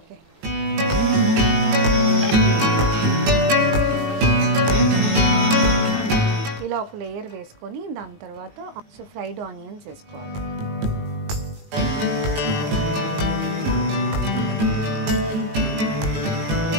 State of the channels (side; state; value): left; late; 19 ms